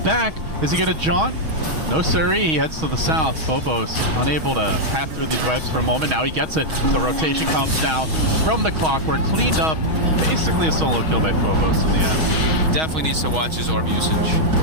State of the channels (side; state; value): left; late; 6.3 ms